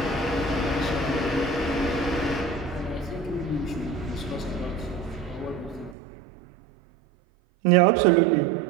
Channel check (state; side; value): drops out; left; at 6.0 s